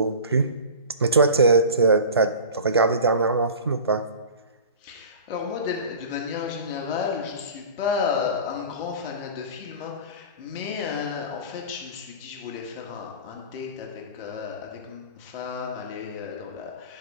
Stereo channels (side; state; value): both; inverted; correlation -0.37